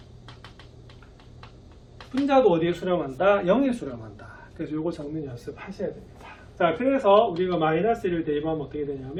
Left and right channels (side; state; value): both; identical; correlation 1.00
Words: 분자도 어디에 수렴한다? 0에 수렴한다. 그래서 요거 적는 연습 하셔야 됩니다. 자, 그래서 우리가 마이너스 1을 대입하면 어떻게